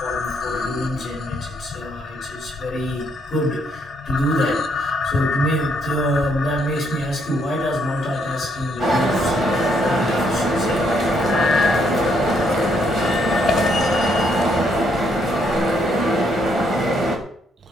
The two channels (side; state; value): both; normal; correlation 0.72